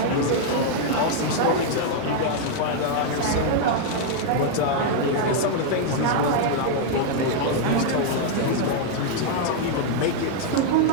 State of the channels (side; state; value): both; different; correlation 0.00